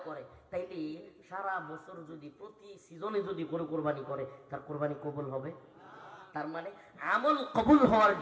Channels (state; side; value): identical; both; correlation 1.00